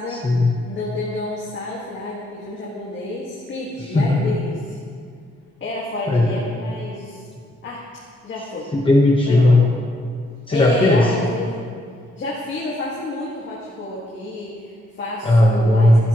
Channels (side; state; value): both; normal; correlation 0.75